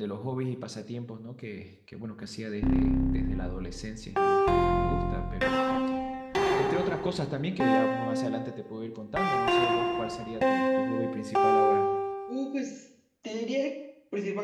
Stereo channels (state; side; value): identical; both; correlation 1.00